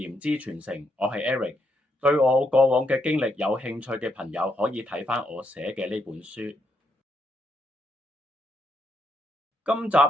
之傳承，我係 Eric。對我過往嘅經歷有興趣嘅朋友，可以睇返我寫嘅呢本書。今集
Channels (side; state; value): both; normal; correlation 0.78